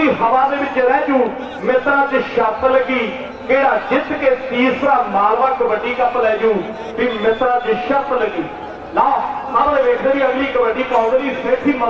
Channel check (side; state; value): both; identical; correlation 1.00